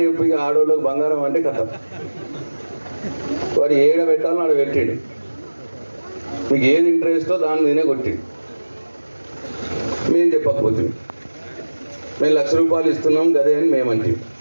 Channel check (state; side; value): inverted; both; correlation -1.00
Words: చెప్పి ఆడవాళ్ళకి బంగారం అంటే కథ. వాడు ఏడ పెట్టాలని ఆడ పెట్టాడు, మీకు ఏది ఇంట్రెస్టో దాని మీదనే కొట్టిండు. మేము చెప్పకపోతుంది, మేము 1,00,000 రూపాయలు ఇస్తున్నాం గదే అని మేమంటే.